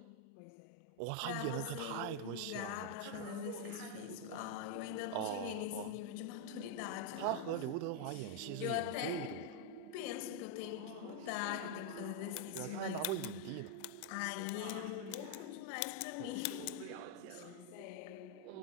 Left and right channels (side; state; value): both; different; correlation 0.00